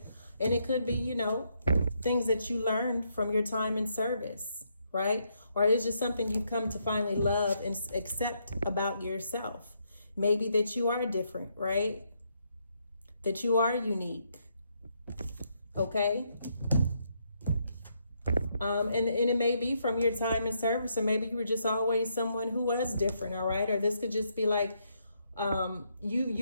And it could be, things that you learned from your time in service, right? Or it's just something you've come to finally love and accept about yourself. Maybe that you are different, right? That you are unique, okay? And it may be from your time in service, or maybe you were just always someone who was different, all right? Or this could just be like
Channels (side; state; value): both; inverted; correlation -0.76